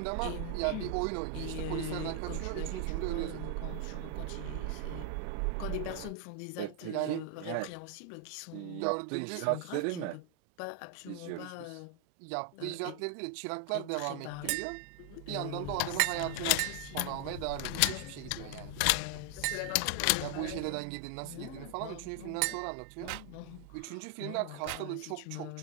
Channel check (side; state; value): both; different; correlation 0.00